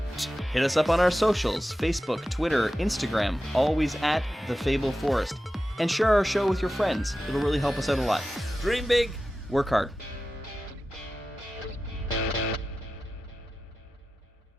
Hit us up on our socials, Facebook, Twitter, Instagram, always at The Fable Forest. And share our show with your friends. It'll really help us out a lot. Dream big. Work hard.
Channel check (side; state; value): both; normal; correlation 0.93